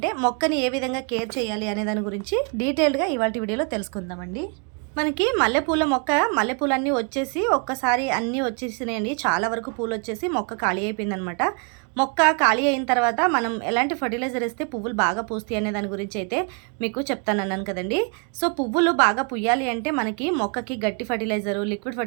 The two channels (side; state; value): left; quieter; 36.8 dB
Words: మొక్కని ఏ విధంగా కేర్ చేయాలి అనే దాని గురించి డీటెయిల్డ్గా ఇవాల్టి వీడియోలో తెలుసుకుందామండి. మనకి మల్లెపూల మొక్క మల్లెపూలన్నీ వచ్చేసి ఒక్కసారి అన్నీ వచ్చేసినాయండి. చాలా వరకు పూలు వచ్చేసి మొక్క ఖాళీ అయిపోయిందనమాట. మొక్క ఖాళీ అయిన తర్వాత మనం ఎలాంటి ఫర్టిలైజర్ ఇస్తే పువ్వులు బాగా పూస్తాయి అనే దాని గురించి అయితే మీకు చెప్తానన్నాను కదండి. సో పువ్వులు బాగా పుయ్యాలి అంటే మనకి మొక్కకి గట్టి ఫర్టిలైజరు, లిక్విడ్